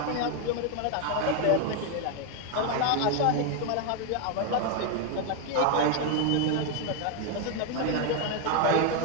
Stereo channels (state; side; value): different; both; correlation 0.01